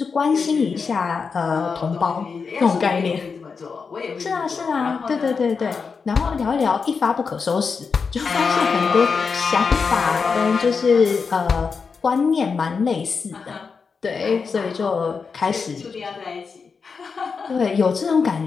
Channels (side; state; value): right; quieter; 5.3 dB